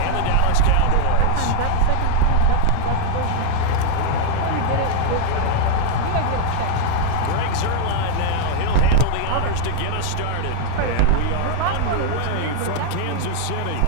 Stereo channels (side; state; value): both; different; correlation 0.00